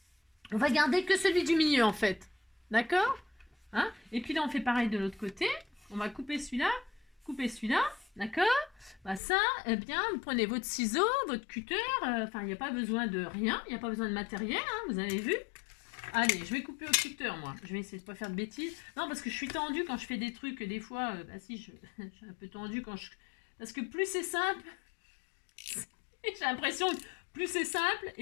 on va garder que celui du milieu, en fait. D'accord? Hein? Et puis là, on fait pareil de l'autre côté. On va couper celui-là, d'accord? Bah ça, eh bien, vous prenez votre ciseau, votre cutter. Enfin, il n'y a pas besoin de rien. Il n'y a pas besoin de matériel, hein, vous avez vu? Allez, je vais couper au cutter, moi. Je vais essayer de ne pas faire de bêtises. Non, parce que je suis tendue quand je fais des trucs. Des fois, bah si, je suis un peu tendue quand je... Parce que plus c'est simple, j'ai l'impression que plus c'est simple,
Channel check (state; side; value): drops out; right; at 9.2 s